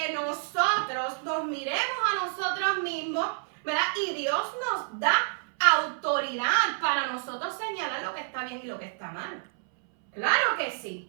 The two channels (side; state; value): left; silent; 59 dB below the other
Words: nosotros nos miremos a nosotros mismos, ¿verdad? Y Dios nos da autoridad para nosotros señalar lo que está bien y lo que está mal. Claro que